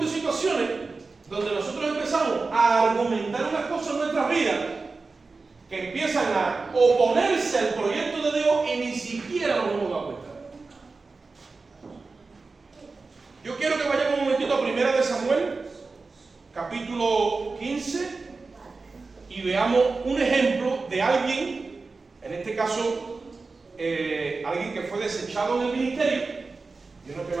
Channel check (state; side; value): quieter; left; 4.0 dB